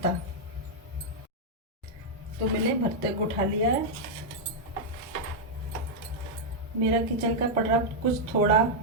तो मैंने भरते को उठा लिया है। मेरा किचन का पटरा कुछ थोड़ा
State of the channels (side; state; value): both; normal; correlation -0.04